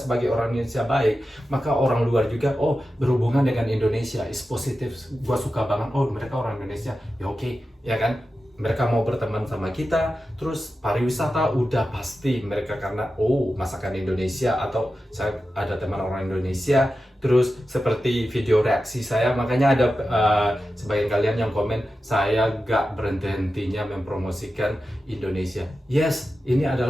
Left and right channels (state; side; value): normal; both; correlation 0.92